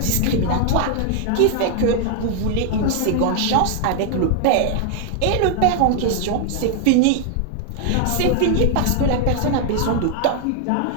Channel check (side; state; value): both; different; correlation 0.00